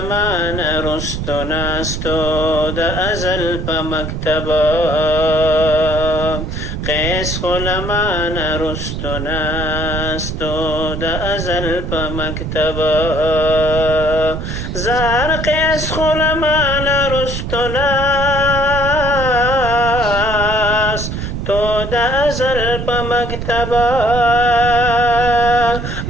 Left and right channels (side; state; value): right; noise; rumble, 5 dB below the sound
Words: رستو ناستو د ازل په مکتبه قیس خلمان رستو ناستو د ازل په مکتبه زار قیس خلمان رستو ناستو د ازل په مکتبه